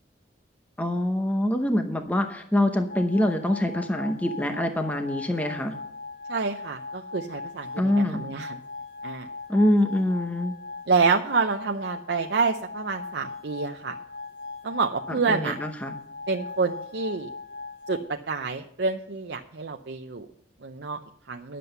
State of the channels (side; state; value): both; normal; correlation 0.35